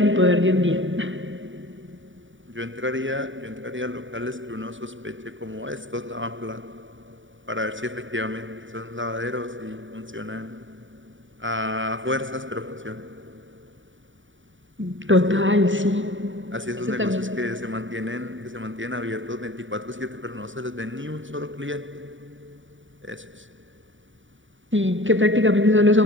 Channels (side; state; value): left; late; 0.56 ms